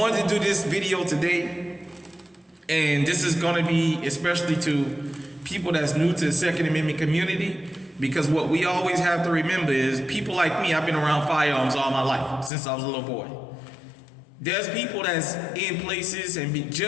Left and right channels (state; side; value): drops out; right; at 12.5 s